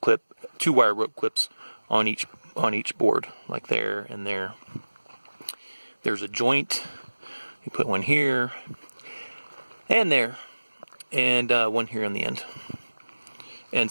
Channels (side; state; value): both; inverted; correlation -1.00